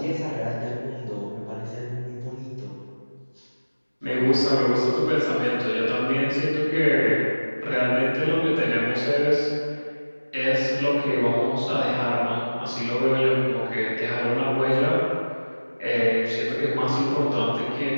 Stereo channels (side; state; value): both; inverted; correlation -1.00